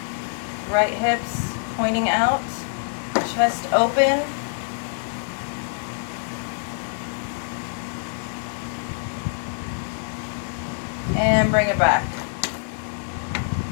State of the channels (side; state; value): right; silent; digital silence